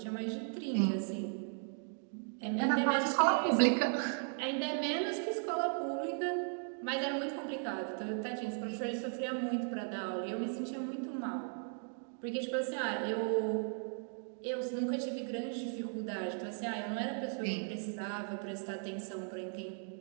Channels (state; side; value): silent; left; 53 dB below the other